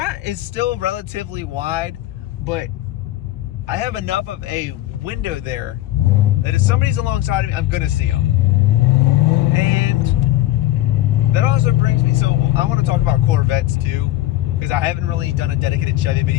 is still relatively wide, but I have enough of a window there that if somebody's alongside of me, I'm gonna see them. And that also brings me, so I want to talk about Corvettes too, because I haven't really done a dedicated Chevy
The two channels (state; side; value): quieter; right; 15.3 dB